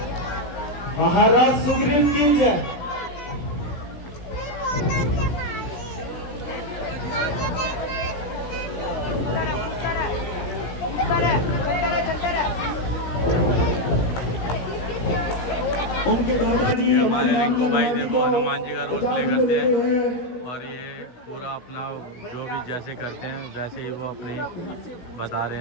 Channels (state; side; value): late; right; 17 ms